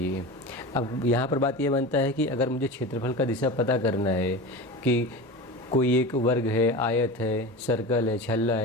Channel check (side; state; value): both; normal; correlation 0.29